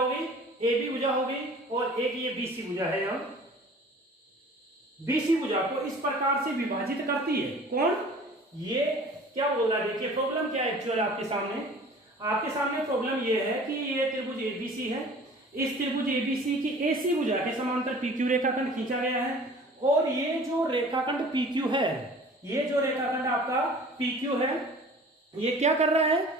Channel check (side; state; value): both; normal; correlation 0.46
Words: AB भुजा होगी, और एक ये BC भुजा है। यहाँ BC भुजा को इस प्रकार से विभाजित करती है कौन, ये क्या बोल रहा है, देखिए प्रॉब्लम क्या है एक्चुअल आपके सामने प्रॉब्लम ये है कि ये त्रिभुज ABC है, इस त्रिभुज ABC की AC भुजा के समांतर PQ रेखाखंड खींचा गया है, और ये जो रेखाखंड PQ है, ये जो रेखाखंड आपका PQ है, ये क्या कर रहा है,